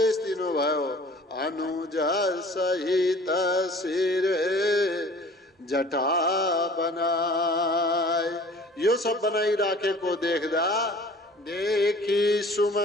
दिनुभयो। अनुज सहित शिर जटा बनाए। यो सब बनाइराखेको देख्दा देखी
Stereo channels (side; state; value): both; normal; correlation 0.48